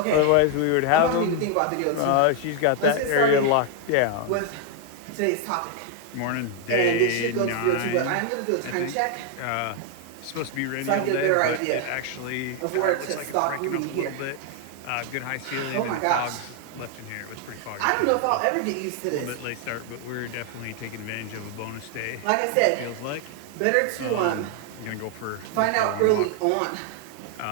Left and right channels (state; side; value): different; both; correlation 0.00